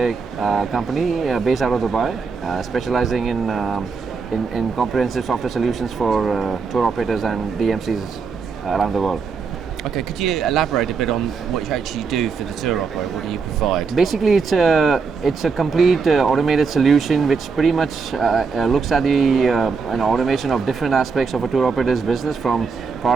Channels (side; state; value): left; quieter; 5.1 dB